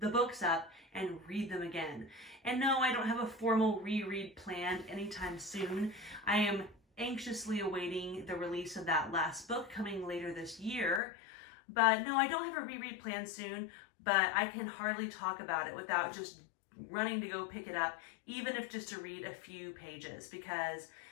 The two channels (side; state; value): right; drops out; at 11.0 s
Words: the books up and read them again. And no, I don't have a formal reread planned anytime soon. I am anxiously awaiting the release of that last book coming later this year. But no, I don't have a reread planned soon, but I can hardly talk about it without just running to go pick it up, even if just to read a few pages, because